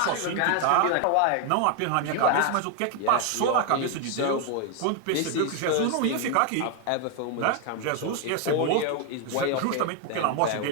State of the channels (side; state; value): both; different; correlation 0.01